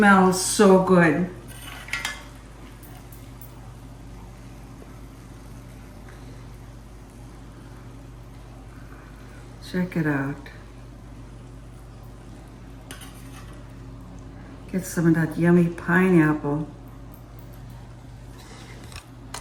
so good. Check it out. Get some of that yummy pineapple.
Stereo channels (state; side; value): identical; both; correlation 1.00